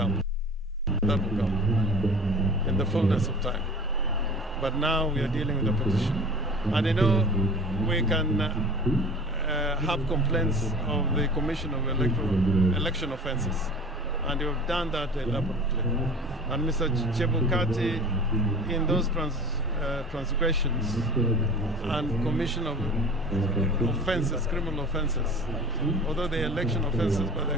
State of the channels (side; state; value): both; normal; correlation 0.41